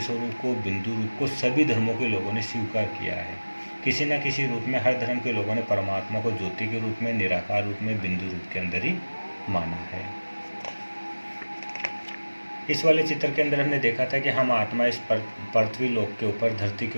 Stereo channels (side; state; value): both; inverted; correlation -1.00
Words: स्वरूप को, बिंदु रूप को सभी धर्मों के लोगों ने स्वीकार किया है। किसी न किसी रूप में हर धर्म के लोगों ने परमात्मा को ज्योति के रूप में, निराकार रूप में, बिंदु रूप के अंदर ही माना है। इस वाले चित्र के अंदर हमने देखा था कि हम आत्मा इस पृथ्वी लोक के ऊपर, धरती के